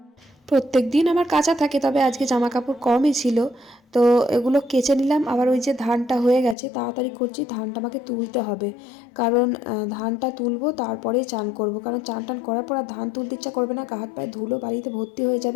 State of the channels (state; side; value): drops out; right; at 6.6 s